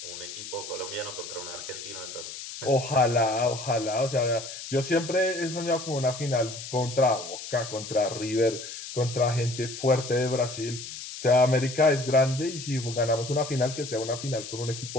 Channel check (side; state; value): left; noise; hiss, 10 dB below the sound